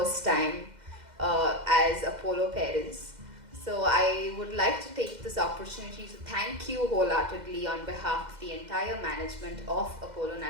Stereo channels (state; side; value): late; left; 2.0 ms